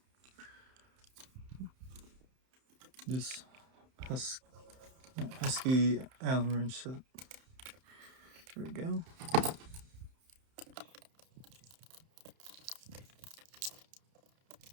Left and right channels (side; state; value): left; late; 31 ms